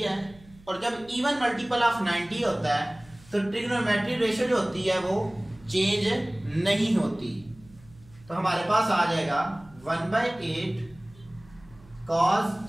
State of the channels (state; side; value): noise; right; hum, 25 dB below the sound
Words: और जब इवन मल्टीपल ऑफ 90 होता है तो ट्रिग्नोमेट्रिक रेशियो जो होती है वो चेंज नहीं होती। तो हमारे पास आ जाएगा 1/8 cos